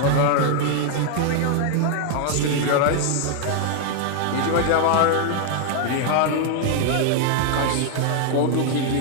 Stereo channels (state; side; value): different; both; correlation 0.00